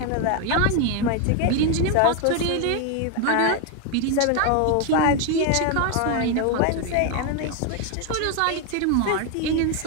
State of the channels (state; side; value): different; both; correlation 0.01